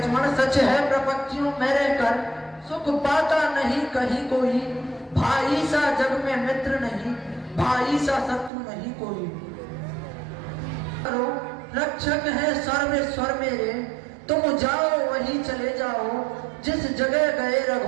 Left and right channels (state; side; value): drops out; left; at 8.5 s